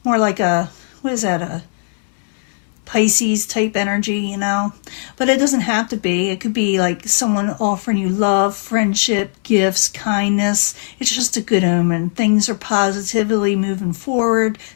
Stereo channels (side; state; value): right; silent; digital silence